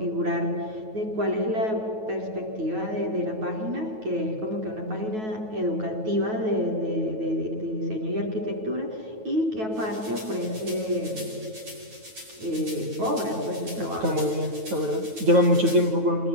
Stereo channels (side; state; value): left; late; 9.3 ms